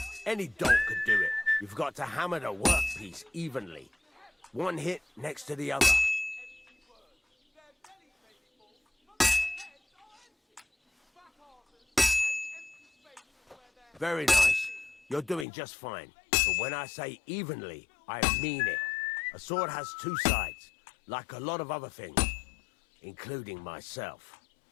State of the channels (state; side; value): drops out; right; at 15.5 s